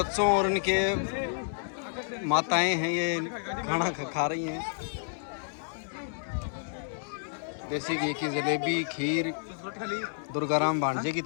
और उनके माताएं हैं, ये खाना खा रही हैं। देसी घी की जलेबी, खीर दुर्गाराम भांजे की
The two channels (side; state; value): right; silent; digital silence